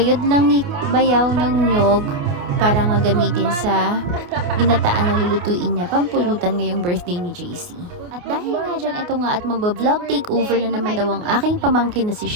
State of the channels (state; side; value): late; left; 28 ms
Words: lang ni Bayaw ng nyog para nga gamitin sa ginataan na lulutuin niya, pampulutan ngayong birthday ni JC. At dahil nga dyan, eto nga at magba-vlog takeover na naman daw ang aking pamangkin na si